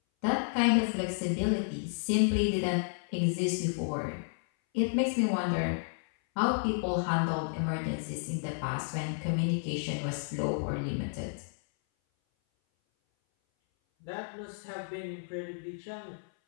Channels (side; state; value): right; silent; 57 dB below the other